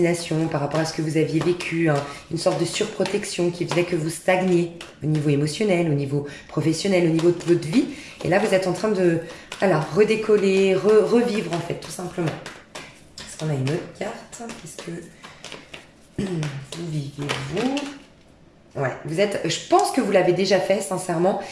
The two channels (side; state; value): both; identical; correlation 1.00